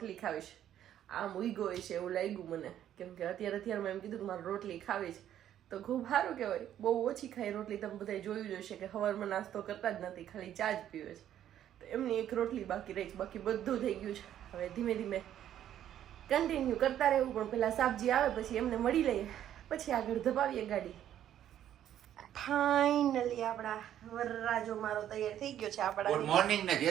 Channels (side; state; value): left; quieter; 11.0 dB